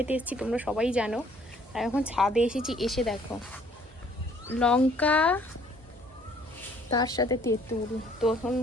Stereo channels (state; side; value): normal; both; correlation 0.60